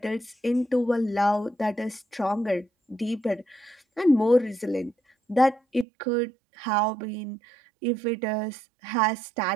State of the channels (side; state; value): left; drops out; at 5.9 s